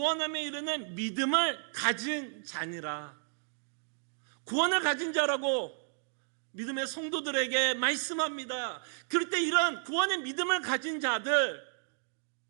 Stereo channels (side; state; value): left; silent; digital silence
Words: 이르는 믿음을 가진 자니라. 구원을 가진 자라고 믿음의 성도들에게 말씀합니다. 그럴 때 이런 구원의 믿음을 가진 자들,